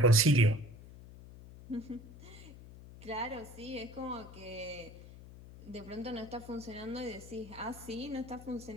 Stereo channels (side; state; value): left; noise; hum, 17 dB below the sound